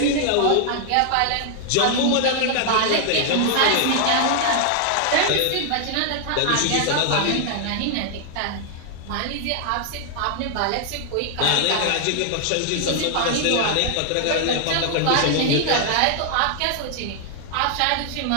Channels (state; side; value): different; both; correlation 0.00